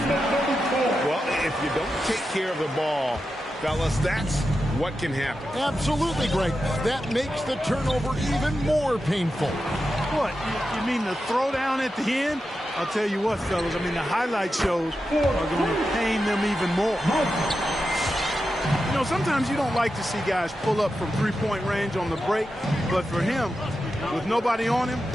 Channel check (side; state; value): both; normal; correlation 0.90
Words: Well, if you don't take care of the ball, fellas, that's what can happen. Absolutely, Greg. That makes the turnover even more painful. What? You mean the throwdown at the end? I'll tell you what, fellas. I mean, the highlight shows are going to pain them even more. You know, sometimes you don't like to see guys pull up from three-point range on the break, but for him, with nobody on him,